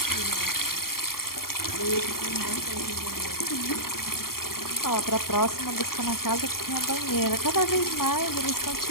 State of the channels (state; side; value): late; right; 0.93 ms